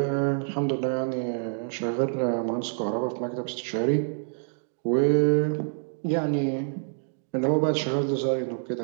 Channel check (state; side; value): silent; left; digital silence